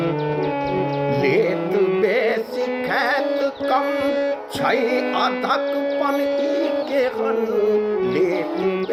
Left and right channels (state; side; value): identical; both; correlation 1.00